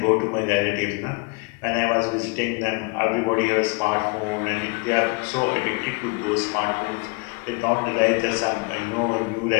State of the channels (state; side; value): quieter; right; 30.0 dB